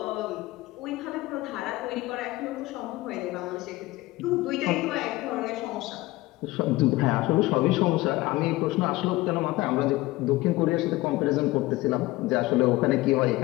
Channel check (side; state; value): right; quieter; 19.2 dB